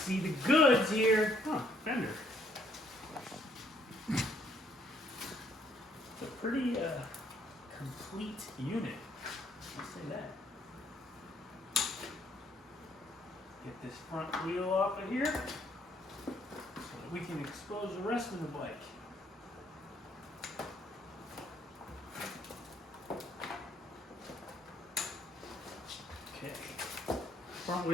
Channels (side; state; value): both; normal; correlation 0.67